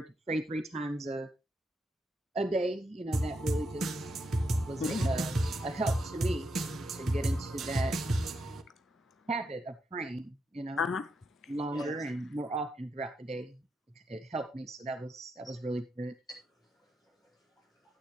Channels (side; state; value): both; normal; correlation 0.82